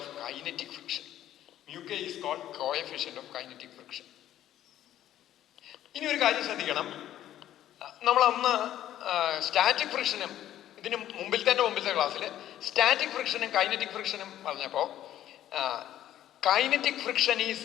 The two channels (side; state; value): right; quieter; 12.3 dB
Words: Mu k is called coefficient of kinetic friction. ഇനി ഒരു കാര്യം ശ്രദ്ധിക്കണം. നമ്മൾ അന്ന് സ്റ്റാറ്റിക് ഫ്രിക്ഷനും ഇതിന് മുമ്പിലത്തെ ക്ലാസ്സിൽ സ്റ്റാറ്റിക് ഫ്രിക്ഷനും കൈനറ്റിക് ഫ്രിക്ഷനും പറഞ്ഞപ്പോൾ kinetic friction is